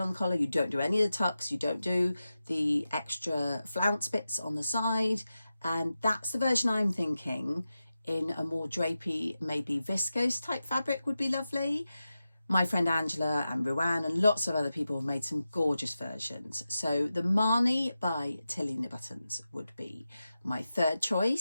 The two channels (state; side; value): inverted; both; correlation -0.92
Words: on the collar, you don't do any of the tucks, you don't do the extra flounce bits on the side. And that's the version I'm thinking. In a more drapey, maybe viscose type fabric would be lovely. My friend Angela and Ruan and lots of other people have made some gorgeous versions. So the Marnie by Tilly and the Buttons would be my third